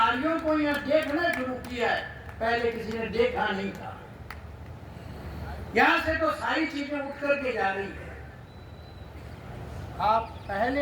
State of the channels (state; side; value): identical; both; correlation 1.00